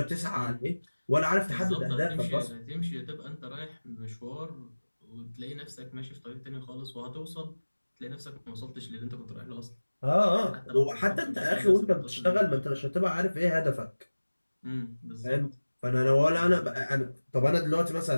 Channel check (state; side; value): inverted; both; correlation -1.00